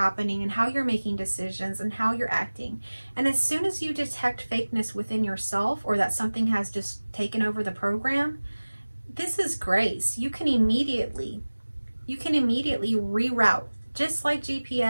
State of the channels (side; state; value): both; inverted; correlation -1.00